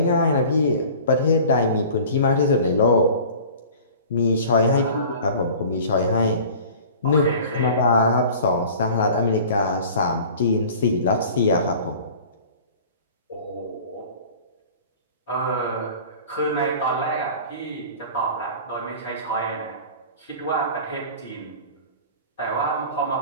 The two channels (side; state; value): both; inverted; correlation -0.43